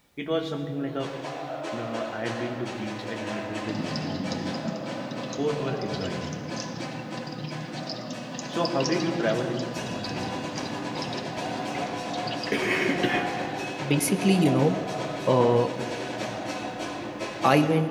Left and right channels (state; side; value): identical; both; correlation 1.00